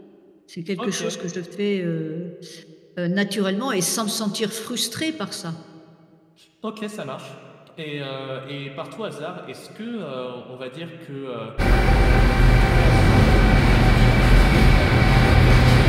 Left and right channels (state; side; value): identical; both; correlation 1.00